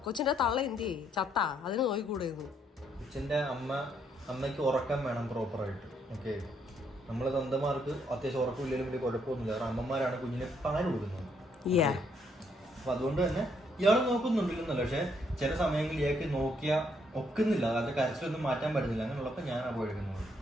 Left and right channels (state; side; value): normal; both; correlation 0.72